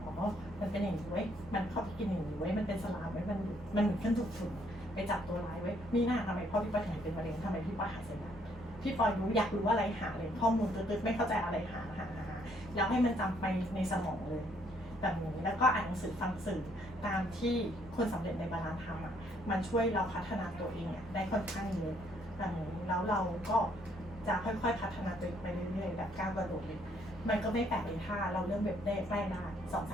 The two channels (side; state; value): both; normal; correlation 0.68